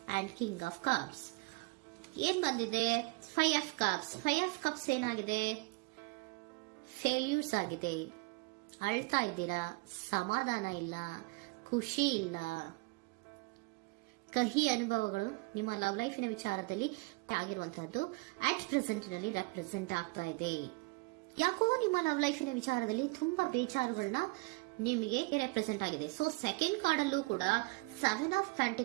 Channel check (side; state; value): left; quieter; 27.3 dB